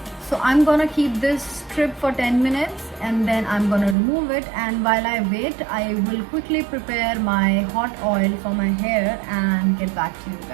So I'm gonna keep this strip for 10 minutes and then I'm gonna remove it, and while I wait I will quickly prepare my hot oil for my hair and get back to you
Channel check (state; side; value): drops out; left; at 4.0 s